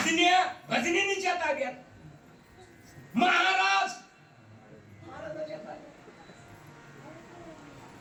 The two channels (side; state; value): both; identical; correlation 1.00